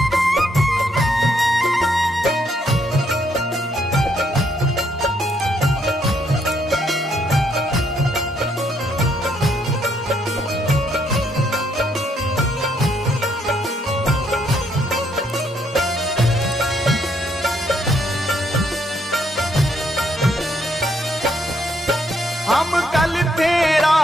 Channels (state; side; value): normal; both; correlation 0.72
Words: हम कल थे